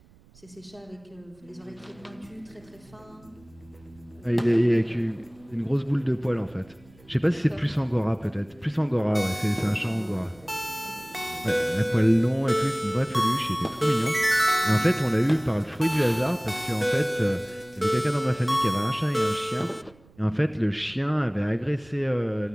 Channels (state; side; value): noise; right; rumble, 28 dB below the sound